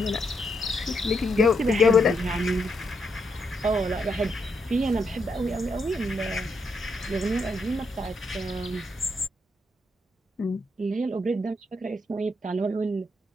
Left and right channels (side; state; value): both; normal; correlation 0.78